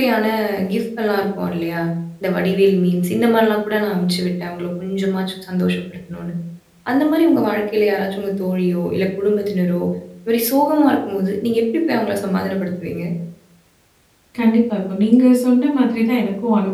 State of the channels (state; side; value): identical; both; correlation 1.00